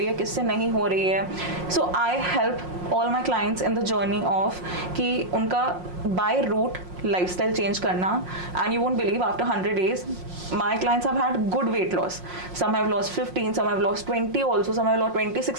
है, किससे नहीं हो रही है. So I help all my clients in the journey of कि उनका बाय रूट लाइफस्टाइल चेंज करना. And you won't believe, after 100 days my clients have had good weight loss. Some have lost 15, some have lost 20 also, some have lost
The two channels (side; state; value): left; late; 5.6 ms